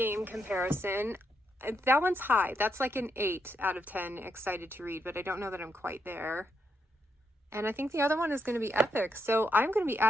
comparison. That one's high. That's like an 8 out of 10 excited to read, but I don't know that I'm quite there. And I think the other one is going to be epic. So I'm going to be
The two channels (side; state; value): both; normal; correlation 0.80